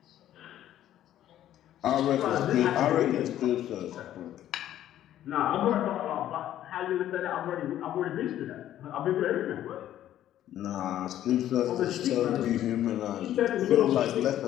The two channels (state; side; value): quieter; right; 12.1 dB